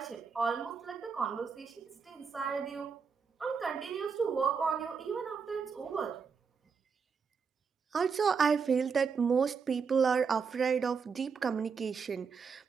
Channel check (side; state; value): left; quieter; 5.8 dB